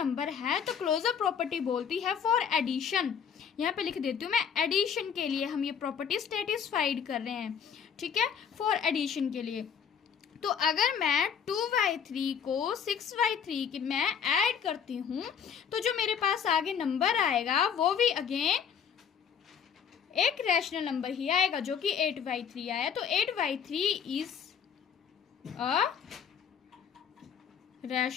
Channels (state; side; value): quieter; right; 7.5 dB